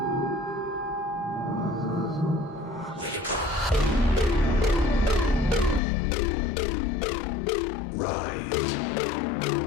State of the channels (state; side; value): drops out; right; at 5.8 s